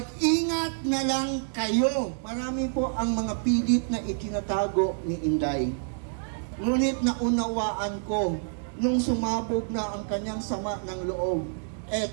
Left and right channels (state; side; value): silent; left; digital silence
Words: na lang kayo. Marami po ang mga pilit na itinatago ni Inday. Ngunit naunawaan ko, nung sumabog na ang kanyang sama ng loob,